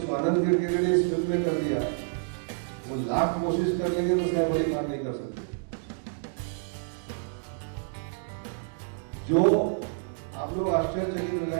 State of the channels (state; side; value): silent; left; digital silence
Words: किरकिरे ने इस फिल्म में कर दिया, वो लाख कोशिश कर लेंगे तो सैफ अली खान नहीं कर सकते। जो आप लोग आश्चर्यचकित हो